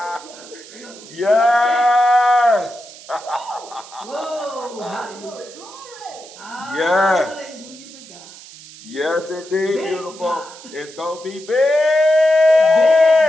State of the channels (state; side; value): noise; right; hiss, 18 dB below the sound